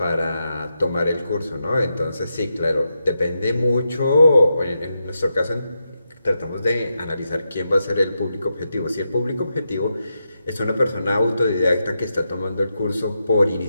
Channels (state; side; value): inverted; both; correlation -0.86